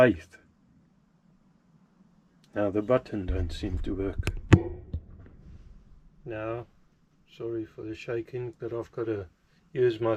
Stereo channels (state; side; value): identical; both; correlation 1.00